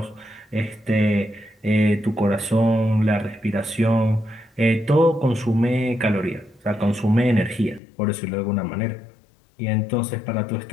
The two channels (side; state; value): right; drops out; at 7.8 s